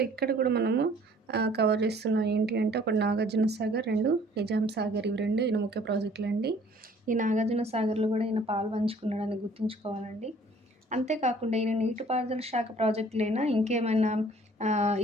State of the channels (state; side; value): normal; both; correlation 0.55